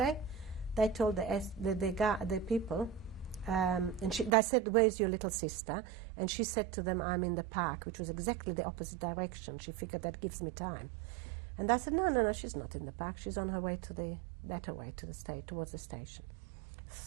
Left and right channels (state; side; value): drops out; left; at 4.3 s